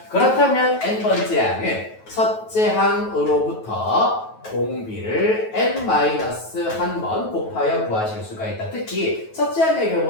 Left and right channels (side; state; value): right; late; 9.3 ms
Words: 그렇다면 n번째 항은 첫째 항으로부터 공비를 n-1번 곱하여 구하실 수가 있다. 특히 첫째 항의